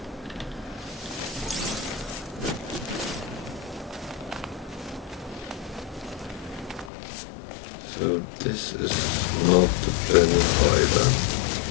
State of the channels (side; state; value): right; drops out; at 6.9 s